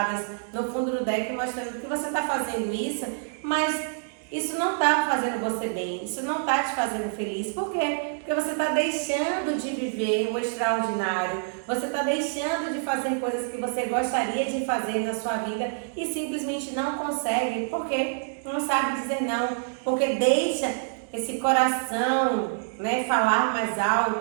no fundo do deck mostrando que você está fazendo isso, mas isso não está fazendo você bem, isso não está te fazendo feliz. Por quê? Porque você está deixando de viver o extraordinário, você está deixando de fazer coisas que você gostaria de fazer na sua vida e simplesmente não consegue, porque não sabe dizer não, porque deixa esse coração, né, falar mais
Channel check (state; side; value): silent; left; digital silence